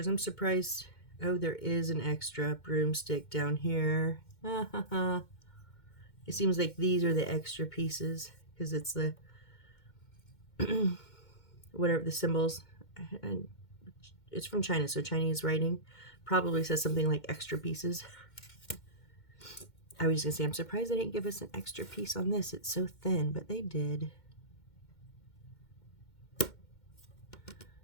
I'm surprised. Oh, there is an extra broomstick down here. It seems like these are the extra pieces because it's the whatever the symbols. And it's from China, so Chinese writing probably says something like extra pieces. I was just gonna say, I'm surprised they didn't give us an extra piece on this. It's so thin, but they did.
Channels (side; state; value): right; late; 2.1 ms